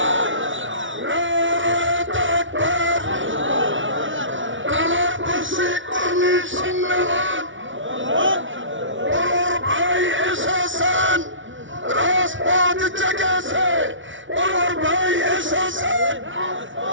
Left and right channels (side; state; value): left; late; 0.56 ms